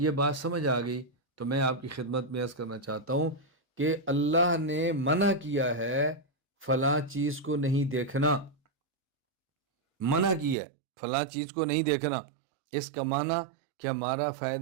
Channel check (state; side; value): drops out; left; at 10.6 s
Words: بات سمجھ آ گئی تو میں آپ کی خدمت میں عرض کرنا چاہتا ہوں کہ اللہ نے منع کیا ہے فلاں چیز کو نہیں دیکھنا، منع کی ہے فلاں چیز کو نہیں دیکھنا، اس کا معنی کہ ہمارا